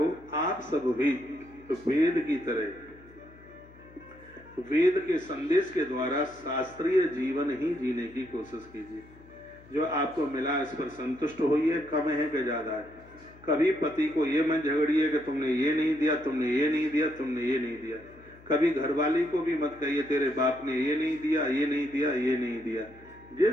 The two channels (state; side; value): noise; left; hum, 23 dB below the sound